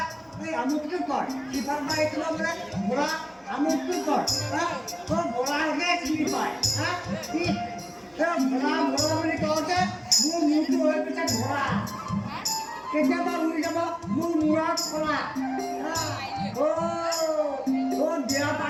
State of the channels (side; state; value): both; identical; correlation 1.00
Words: এই আমুকটো কৰ ইফালৰ পৰা এই ক'ব বোলে ভোলা আমুকটো কৰ তই ভোলাকে চিনি পায় ভোলা ভোলা বুলি কওঁতে মোৰ মূৰটো হৈ গৈছে ভোলা কেতিয়াবা উৰি যাব মোৰ মূৰত খোলা